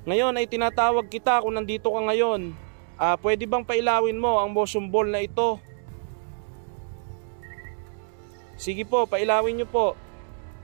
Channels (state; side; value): silent; left; digital silence